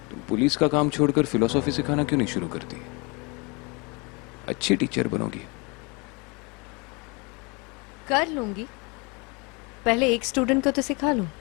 तुम पुलिस का काम छोड़कर फिलोसॉफी सिखाना क्यों नहीं शुरू करती? अच्छी टीचर बनोगी। कर लूंगी, पहले एक स्टूडेंट को तो सिखा लूं।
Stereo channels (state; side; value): quieter; right; 29.2 dB